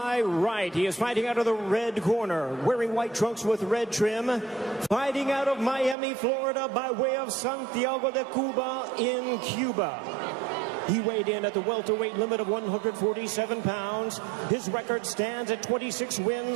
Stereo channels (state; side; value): drops out; left; at 6.0 s